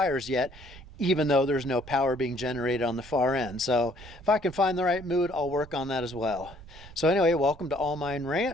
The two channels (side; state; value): right; noise; rumble, 18 dB below the sound